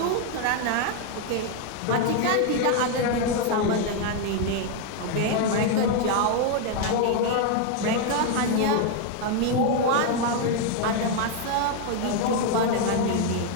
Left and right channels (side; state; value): both; different; correlation 0.01